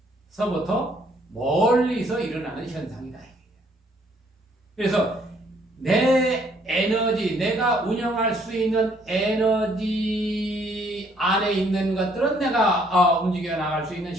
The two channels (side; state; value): both; normal; correlation 0.65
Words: 곁에서부터 멀리서 일어나는 현상이다. 그래서 내 에너지, 내가 운영할 수 있는 에너지 안에 있는 것들은 내가 움직여 나갈 수 있는